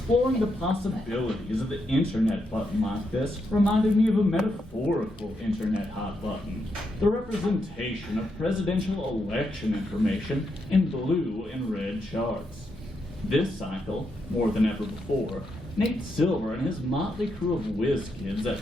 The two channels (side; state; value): both; normal; correlation 0.81